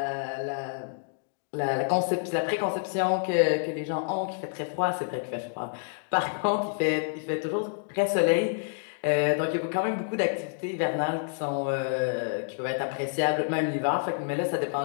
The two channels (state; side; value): silent; right; digital silence